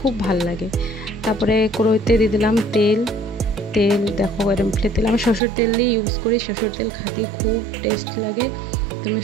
ভালো লাগে। তারপরে কড়াইতে দিয়ে দিলাম তেল। দেখো এরকম তেল, আমি সরষের তেল দিয়ে ইউজ করি। সরষের তেল খেতে খুব টেস্ট লাগে। তুমি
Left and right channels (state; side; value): drops out; left; at 5.4 s